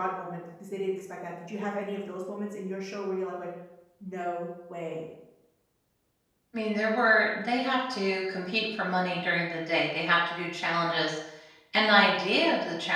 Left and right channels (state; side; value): identical; both; correlation 1.00